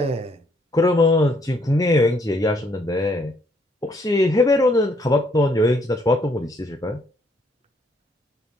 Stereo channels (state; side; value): normal; both; correlation 0.69